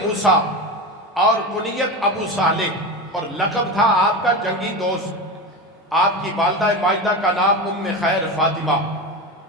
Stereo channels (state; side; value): normal; both; correlation 0.22